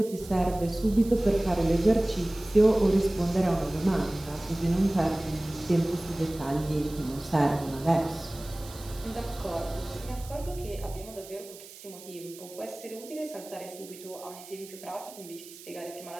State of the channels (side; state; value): right; noise; hiss, 17 dB below the sound